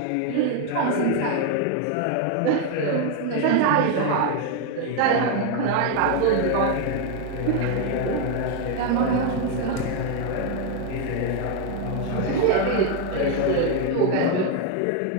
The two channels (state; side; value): different; both; correlation 0.01